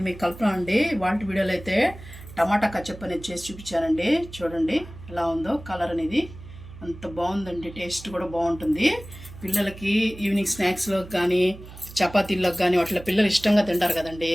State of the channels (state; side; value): noise; right; hum, 16 dB below the sound